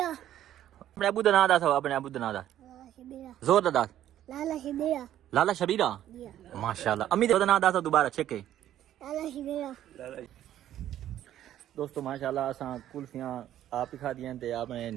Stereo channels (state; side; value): quieter; left; 11.9 dB